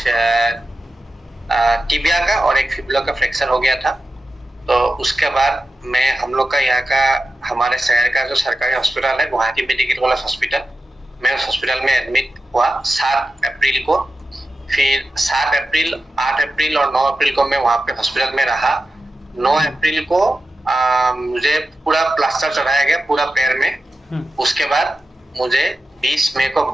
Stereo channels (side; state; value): both; normal; correlation 0.92